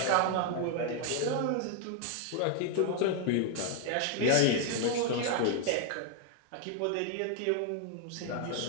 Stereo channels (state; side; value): different; both; correlation 0.00